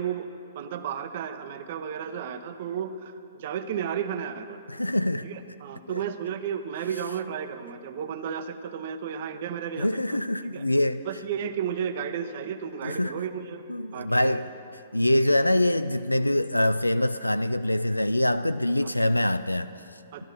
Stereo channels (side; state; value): both; inverted; correlation -0.86